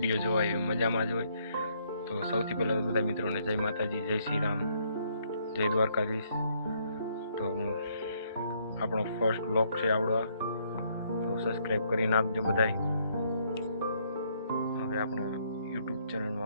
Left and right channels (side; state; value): both; inverted; correlation -0.69